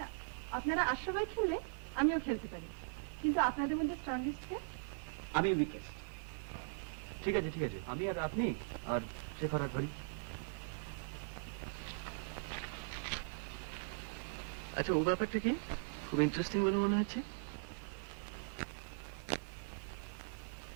আপনারা 8 সবাই খেললে আমিও খেলতে পারি, কিন্তু আপনাদের মধ্যে স্ট্রংগেস্ট কে? আমি উইকেস্ট। ঠিক আছে ঠিক আছে, আমি আর আপনি আর শেখর আর ধরি। আচ্ছা, ও ব্যাপারটা কি খুব ইন্টারেস্টিং বলে মনে হচ্ছে।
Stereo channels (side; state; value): left; silent; digital silence